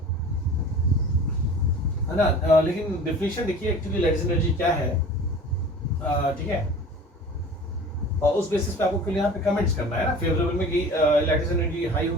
है ना। लेकिन डिफिनेशन देखिए एक्चुअली लैटिस एनर्जी क्या है, ठीक है, और उस बेसिस पे आपको यहाँ पे कमेंट्स करना है ना, फेवरेबल में कि लैटिस एनर्जी हाई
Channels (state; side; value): normal; both; correlation 0.41